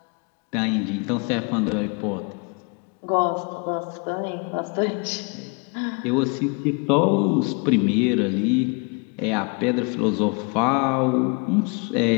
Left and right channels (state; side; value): quieter; right; 33.4 dB